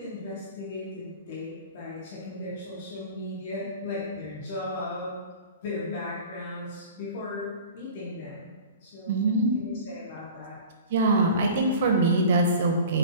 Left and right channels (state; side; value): inverted; both; correlation -0.40